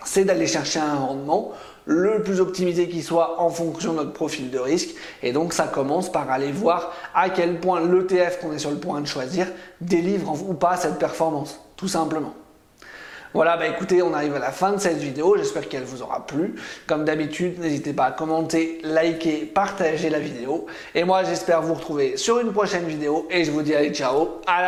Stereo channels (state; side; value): identical; both; correlation 1.00